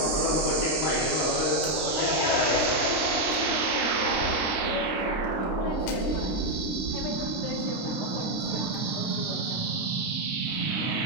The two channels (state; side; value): late; right; 26 ms